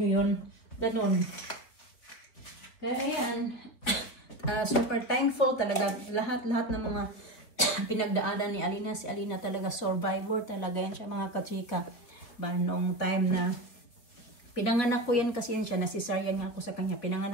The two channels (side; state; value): right; late; 4.3 ms